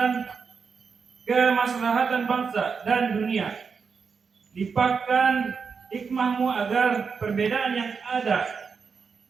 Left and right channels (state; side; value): quieter; left; 5.6 dB